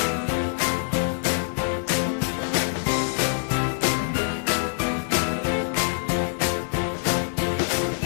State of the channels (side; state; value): right; silent; digital silence